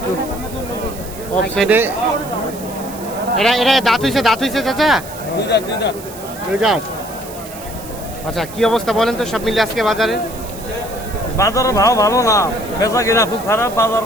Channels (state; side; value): noise; right; hiss, 16 dB below the sound